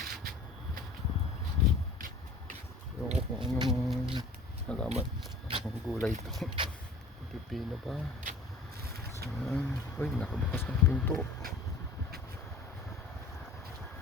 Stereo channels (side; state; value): right; quieter; 3.3 dB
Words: Ewan ko kung anong halaman. Anong gulay ito. Pipino pa. Saan? Uy, nakabukas ng pinto.